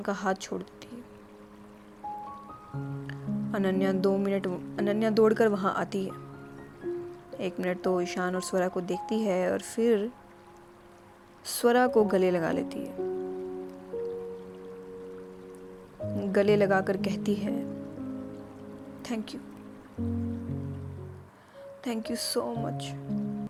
का हाथ छोड़ देती है। अनन्या दौड़कर वहाँ आती है। 1 मिनट तो ईशान और स्वरा को देखती है और फिर स्वरा को गले लगा लेती है। गले लगाकर कहती है थैंक यू सो मच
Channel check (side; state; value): both; identical; correlation 1.00